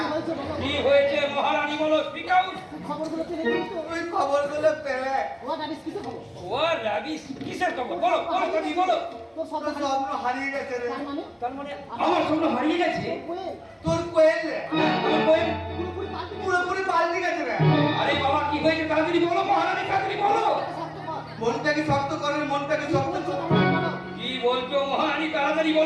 কি হয়েছে মহারানী বলো। Speak out. তুই খবরগুলো পেলে? ও রাবিশ কিসের খবর? বলো বলো তুমি বলো। তোর স্বপ্ন হারিয়ে গেছে রে। তার মানে আমার স্বপ্ন হারিয়ে গেছে? তোর কোয়েল রে আমার কোয়েল পুরোপুরি পাল্টে গেছে রে। আরে বাবা কি হয়েছে তাড়াতাড়ি বলো মহারানী, তাড়াতাড়ি বলো। মনটাকে শক্ত করে, মনটাকে শক্ত করে। কি বলছো মহারানী? তাড়াতাড়ি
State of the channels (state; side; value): identical; both; correlation 1.00